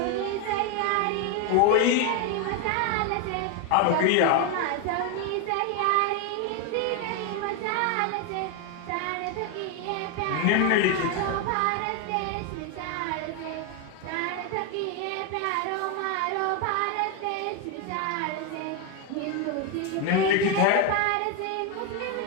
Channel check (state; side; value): different; both; correlation 0.01